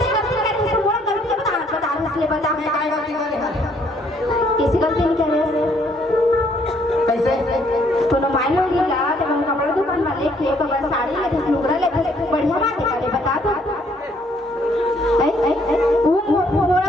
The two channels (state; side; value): normal; both; correlation 0.66